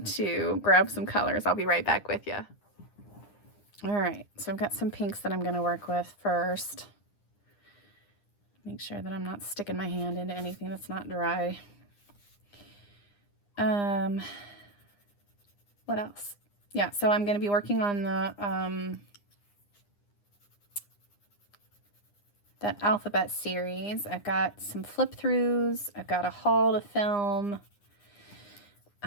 to grab some colors. I'll be right back with you. All right, so I've got some pinks that I'm going to work with first. Make sure that I'm not sticking my hand into anything that's not dry. What else? Yeah, so I'm going to be working on the that alphabet series. I've got some flip throughs. I've got a haul to film.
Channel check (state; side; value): late; right; 9.9 ms